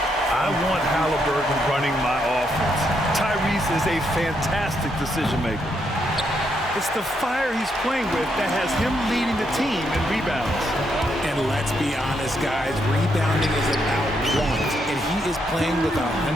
I want Halliburton running my offense. Tyrese is a fantastic decision maker. It's the fire he's playing with that has him leading the team in rebounds. And let's be honest, guys, rebounding is about want, and he is playing with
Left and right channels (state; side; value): normal; both; correlation 0.77